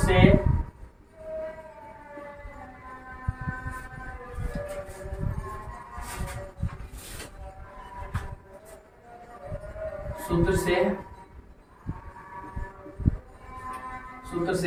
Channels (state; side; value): identical; both; correlation 1.00